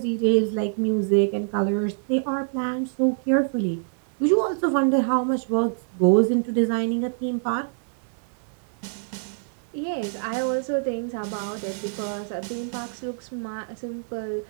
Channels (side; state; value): left; silent; digital silence